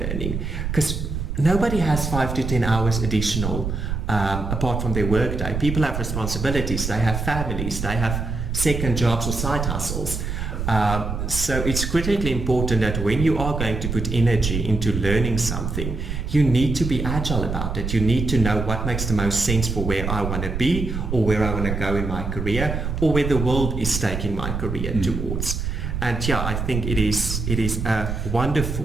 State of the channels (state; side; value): noise; right; rumble, 3 dB below the sound